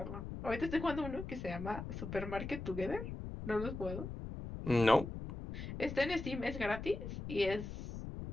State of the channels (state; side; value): noise; left; rumble, 7 dB below the sound